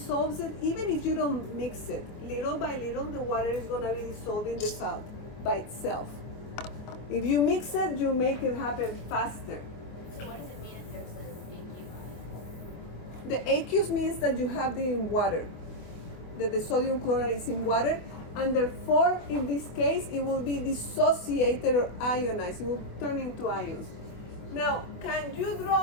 it even if you don't mix it. Little by little, the water is going to be dissolving the salt by itself. If you mix it, you make it happen faster. So what does it mean if there's an aqueous? The aqueous means that you have it in water, that the sodium chloride is in water, and therefore, in this case, it will be dissociated or ionized. It will turn into ions. Now, can you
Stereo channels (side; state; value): right; late; 24 ms